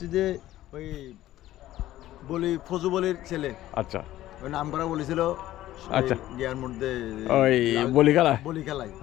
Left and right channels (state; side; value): quieter; right; 14.5 dB